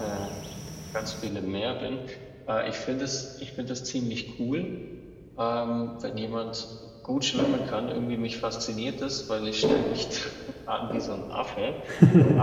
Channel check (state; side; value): identical; both; correlation 1.00